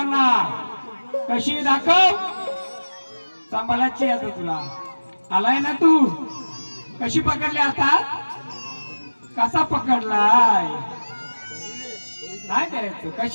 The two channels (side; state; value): both; inverted; correlation -1.00